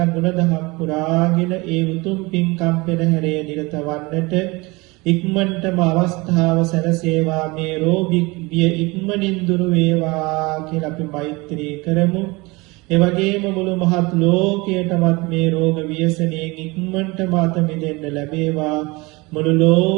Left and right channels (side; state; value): left; quieter; 24.4 dB